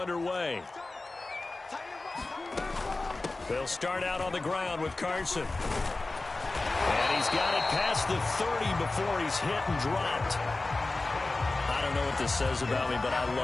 They'll start out on the ground with Carson. And he's got it past the 30 before he's hit and dropped. I don't know what this says about me, but I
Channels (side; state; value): right; quieter; 3.2 dB